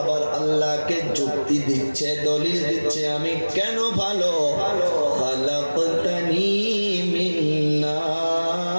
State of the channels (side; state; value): both; inverted; correlation -1.00